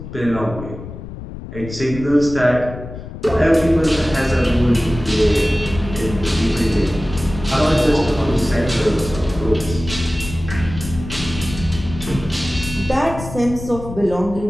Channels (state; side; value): noise; left; rumble, 11 dB below the sound